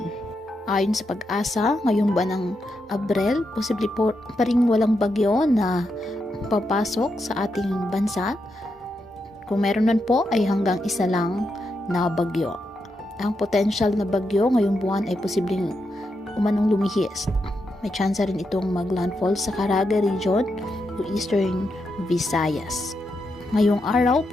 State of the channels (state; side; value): normal; both; correlation 0.84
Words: Ayon sa Pag-asa, ngayong buwan ng Abril, posible po pa rin walang bagyo na papasok sa ating bansa. Kung meron man po ay hanggang isa lang na bagyo. Ang potential na bagyo ngayong buwan ay posibleng umanong lumihis. May chance rin itong maglandfall sa Caraga region o Eastern Visayas. Ngayong araw,